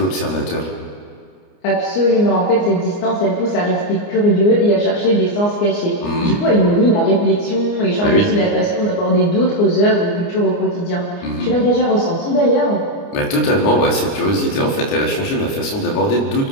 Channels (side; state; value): right; late; 29 ms